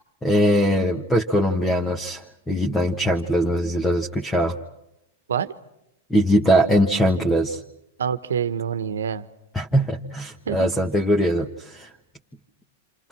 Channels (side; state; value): both; normal; correlation 0.63